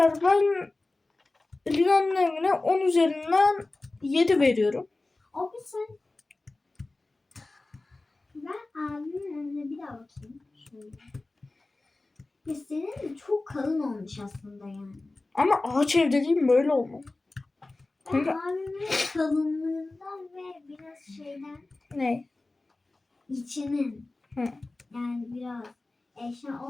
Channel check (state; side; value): quieter; right; 3.1 dB